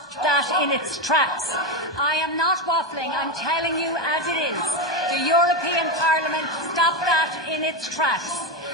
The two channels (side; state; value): both; normal; correlation 0.13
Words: that in its tracks. I am not waffling, I'm telling you as it is. The European Parliament stopped that in its tracks.